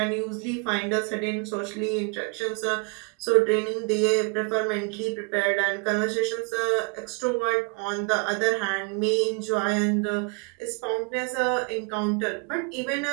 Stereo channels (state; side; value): quieter; left; 32.3 dB